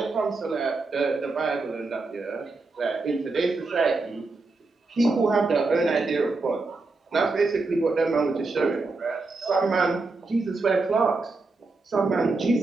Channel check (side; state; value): left; quieter; 3.6 dB